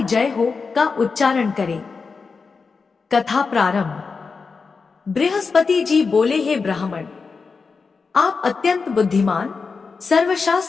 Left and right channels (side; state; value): right; quieter; 4.8 dB